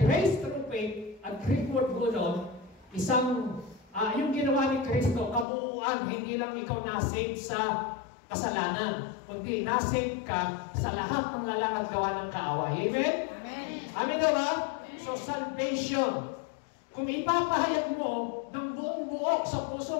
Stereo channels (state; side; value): drops out; right; at 5.5 s